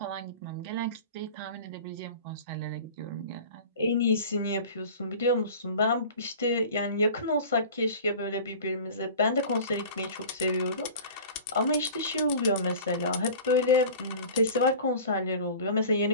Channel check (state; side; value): inverted; both; correlation -0.39